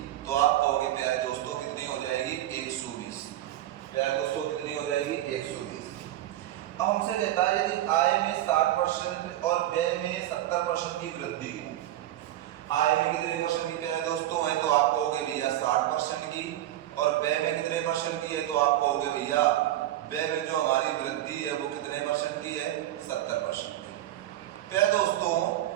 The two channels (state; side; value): quieter; left; 13.8 dB